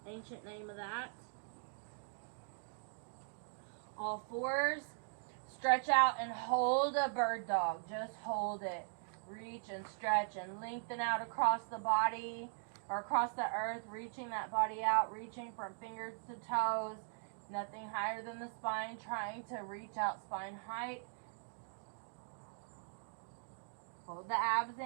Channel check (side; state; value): left; silent; digital silence